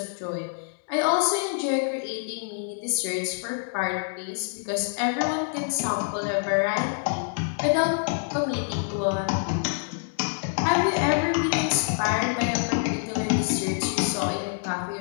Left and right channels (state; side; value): silent; right; 61 dB below the other